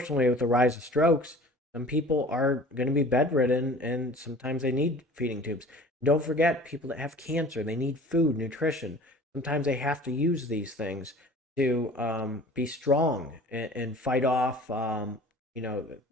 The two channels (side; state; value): both; normal; correlation 0.44